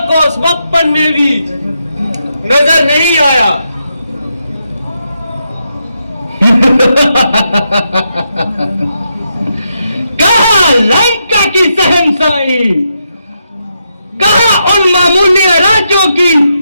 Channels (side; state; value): both; inverted; correlation -0.82